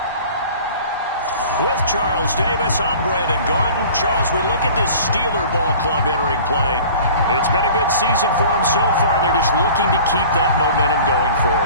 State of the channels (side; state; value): both; inverted; correlation -0.44